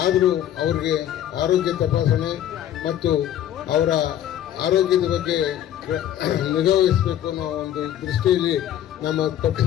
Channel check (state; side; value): quieter; right; 11.3 dB